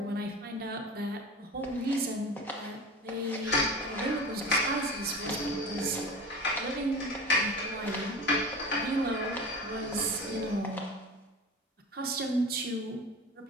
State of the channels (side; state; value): both; normal; correlation 0.32